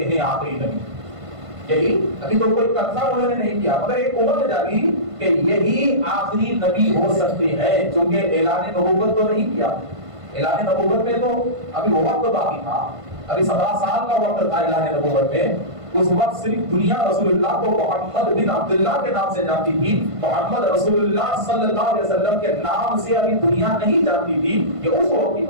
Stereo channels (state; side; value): late; left; 1.5 ms